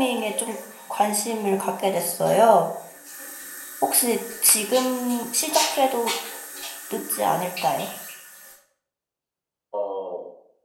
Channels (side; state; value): both; identical; correlation 1.00